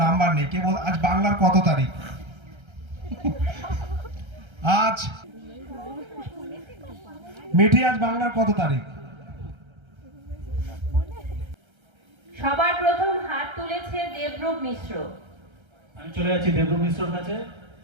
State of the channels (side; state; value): left; late; 1.3 ms